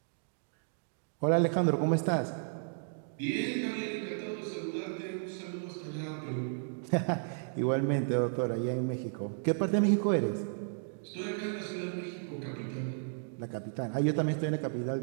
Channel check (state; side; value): silent; left; digital silence